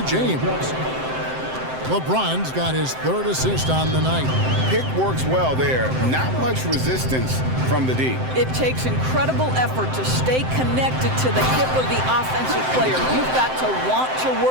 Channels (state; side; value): late; left; 7.7 ms